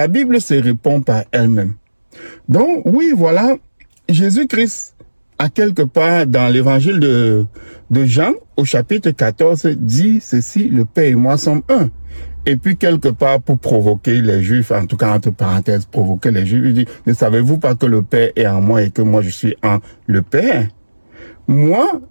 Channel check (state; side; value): inverted; both; correlation -1.00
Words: Bible se répond par elle-même. Donc, oui, voilà, Jésus-Christ, à quelque part dans l'évangile de Jean, au chapitre 14, dit ceci, le Père et moi sommes un. Et puis, quelque part, pour provoquer les Juifs, en tout cas, entre parenthèses, provoquer les Juifs, il dit, ne savez-vous pas que le Père est en moi et que moi je suis en le Père? Moi,